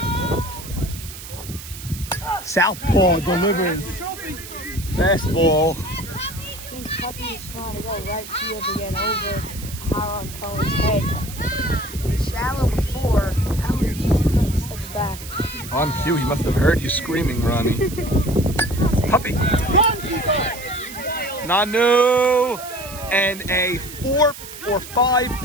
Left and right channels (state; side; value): noise; right; hiss, 13 dB below the sound